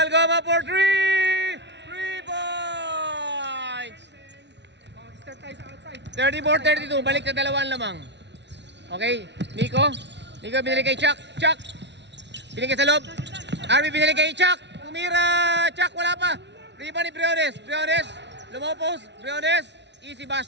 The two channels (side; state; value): left; late; 0.51 ms